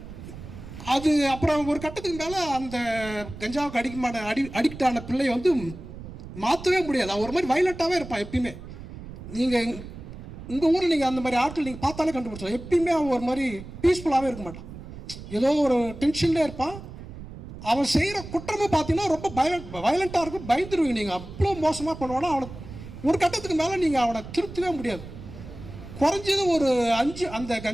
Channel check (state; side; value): noise; right; rumble, 13 dB below the sound